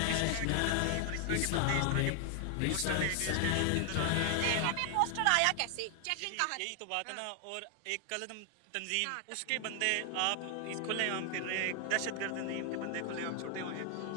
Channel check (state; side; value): different; both; correlation 0.00